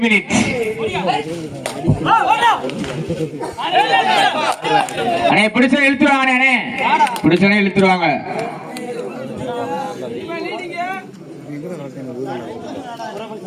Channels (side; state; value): both; identical; correlation 1.00